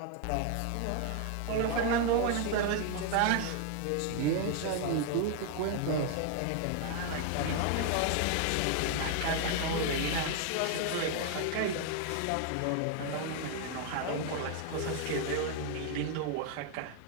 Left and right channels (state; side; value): different; both; correlation 0.00